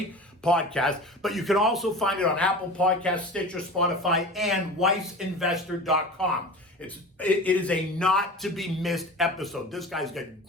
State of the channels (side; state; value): both; normal; correlation 0.34